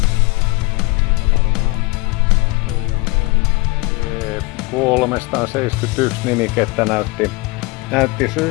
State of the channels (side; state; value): right; quieter; 24.3 dB